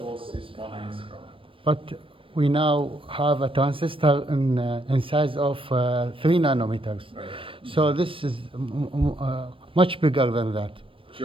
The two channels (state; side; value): late; left; 0.25 ms